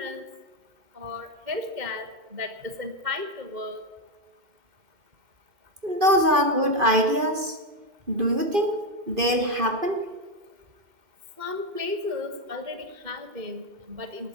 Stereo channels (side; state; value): left; late; 2.5 ms